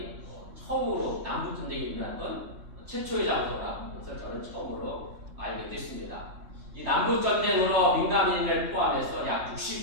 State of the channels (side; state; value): left; late; 3.3 ms